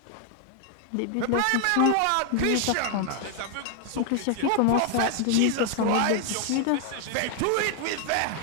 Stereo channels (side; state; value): both; different; correlation 0.00